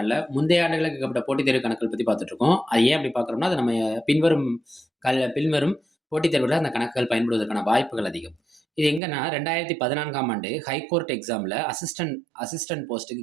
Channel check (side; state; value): left; drops out; at 9.0 s